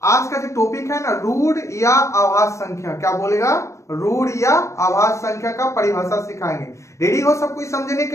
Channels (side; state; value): right; late; 0.14 ms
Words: आज का जो टॉपिक है ना, रूढ़ या आभास संख्या। क्या बोलेगा? रूढ़ या आभास संख्या का परिभाषा सिखाएंगे। रेडी हो सब कोई समझने